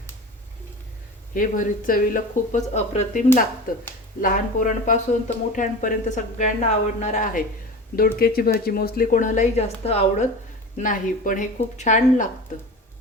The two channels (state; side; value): normal; both; correlation 0.33